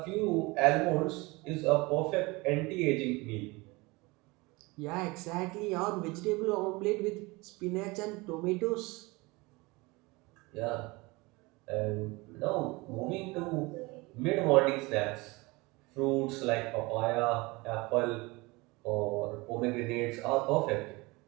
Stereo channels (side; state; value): left; quieter; 24.0 dB